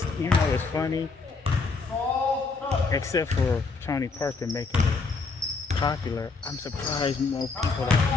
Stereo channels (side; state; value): right; quieter; 4.3 dB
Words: you know, it's funny. Except for Tony Parker making it popular, I'm surprised more people